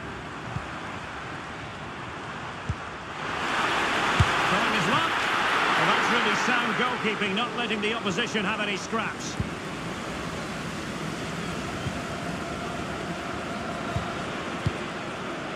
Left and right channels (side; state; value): both; identical; correlation 1.00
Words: Trying his luck. Well, that's really sound goalkeeping, not letting the opposition have any scraps.